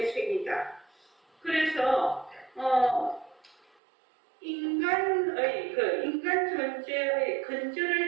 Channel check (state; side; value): drops out; left; at 3.7 s